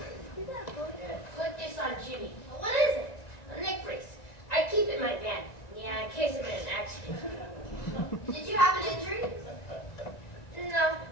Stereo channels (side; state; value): right; late; 1.9 ms